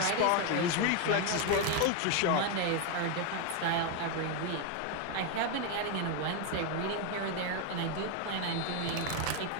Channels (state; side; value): different; both; correlation 0.01